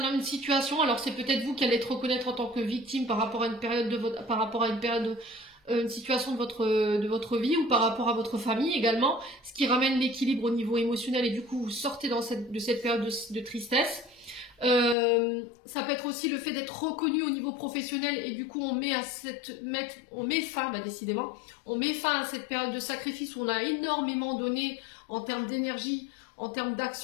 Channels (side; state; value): right; drops out; at 15.0 s